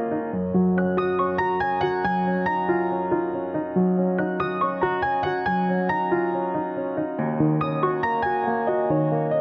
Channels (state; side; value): identical; both; correlation 1.00